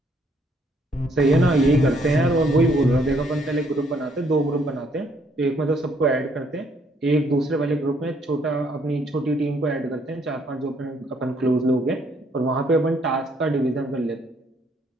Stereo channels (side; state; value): both; normal; correlation 0.68